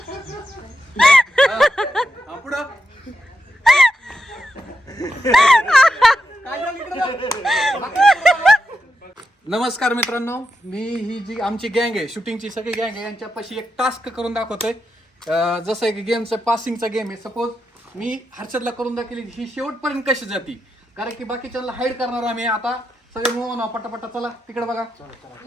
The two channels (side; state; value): both; normal; correlation 0.85